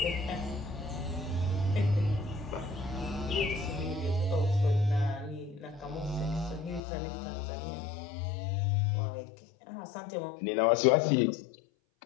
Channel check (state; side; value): drops out; right; at 6.8 s